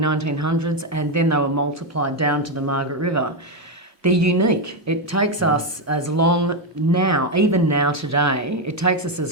and then they were multiplied down to the Margaret River. They're unique. It takes us as long now, even now today, it takes us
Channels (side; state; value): both; normal; correlation 0.06